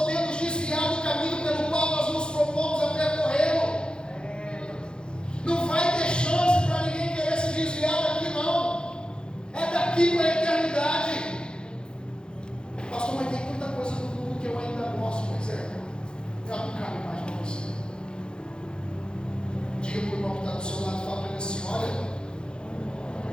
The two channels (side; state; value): right; late; 0.049 ms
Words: nos desviar do caminho pelo qual nós nos propomos a percorrer. Não vai ter chance para ninguém querer se desviar daqui, não. É daqui para a eternidade. Pastor, mas tem tanta coisa no mundo que eu ainda gosto. Pois é, eu não cabe mais para você. Diga para o irmão que está do seu lado, fala para ele assim, olha,